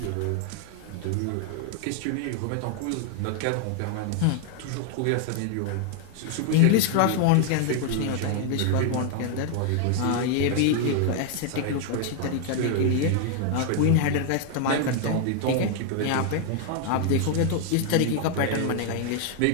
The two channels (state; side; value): different; both; correlation 0.00